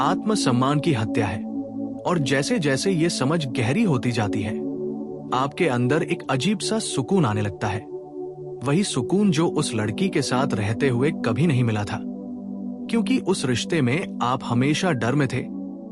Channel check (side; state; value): both; identical; correlation 1.00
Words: आत्मसम्मान की हत्या है। और जैसे जैसे ये समझ गहरी होती जाती है, आपके अंदर एक अजीब सा सुकून आने लगता है। वही सुकून जो उस लड़की के साथ रहते हुए कभी नहीं मिला था। क्योंकि उस रिश्ते में आप हमेशा डर में थे,